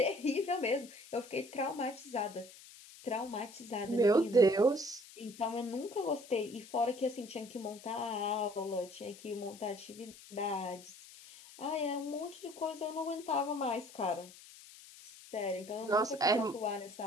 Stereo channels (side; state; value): left; noise; hiss, 19 dB below the sound